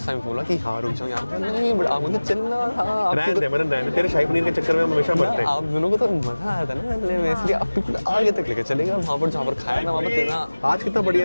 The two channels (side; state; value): both; inverted; correlation -1.00